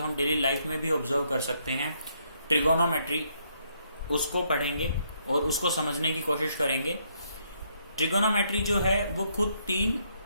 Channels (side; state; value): both; inverted; correlation -0.73